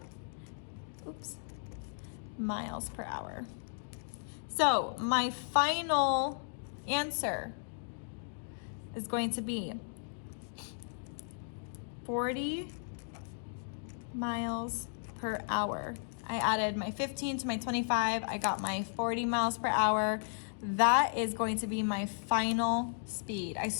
Miles per hour. So my final answer is going to be 40 miles per hour. I added my 15 to my 25. I got my 40 miles per hour. That is going to be my final speed. I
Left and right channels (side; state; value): right; silent; digital silence